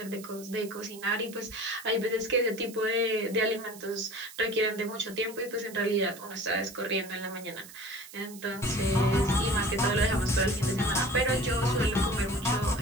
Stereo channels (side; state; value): right; noise; hiss, 17 dB below the sound